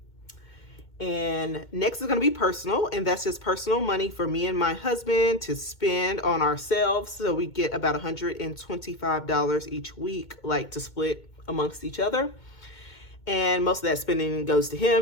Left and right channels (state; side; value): late; right; 2.2 ms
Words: And next is going to be personal, and that's just personal money for me and my husband to spend on ourselves. So we get about $125 each week, like to split amongst each other. And most of that spending goes to